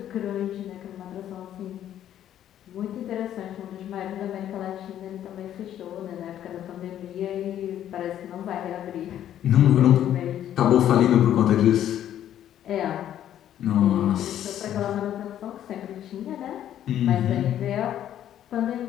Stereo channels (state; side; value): quieter; right; 11.1 dB